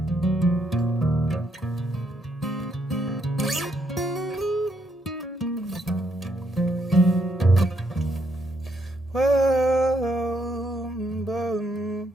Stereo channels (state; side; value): normal; both; correlation 0.75